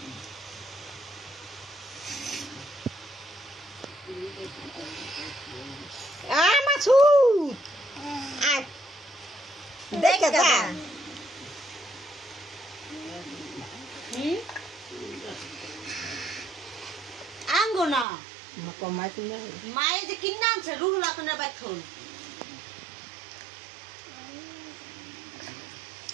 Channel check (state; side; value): drops out; left; at 18.1 s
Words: আঙ্গনা মায়ে যে কিনে আনছে রুহুল আখনের বাথন